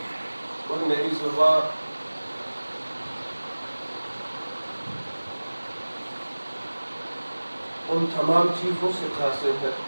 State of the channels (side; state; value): both; inverted; correlation -1.00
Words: اور میری زبان ان تمام چیزوں سے قاصر ہے،